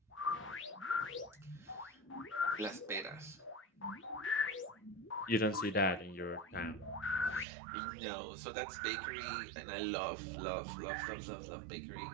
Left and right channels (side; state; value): left; drops out; at 7.5 s